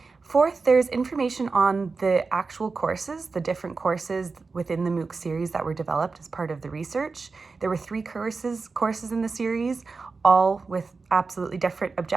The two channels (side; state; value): left; quieter; 4.3 dB